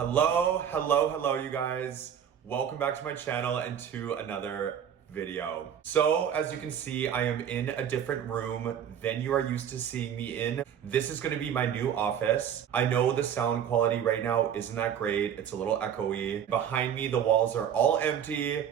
you guys. Welcome back to my channel and to another video. So, as you can see, I am in a different room than you are used to seeing me in. This is gonna be my new office. I know the sound quality right now isn't that great. It's a little echoey. Behind me, the walls are all empty.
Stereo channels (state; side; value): quieter; left; 8.9 dB